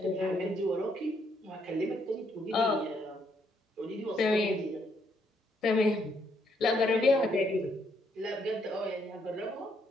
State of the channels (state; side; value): normal; both; correlation 0.73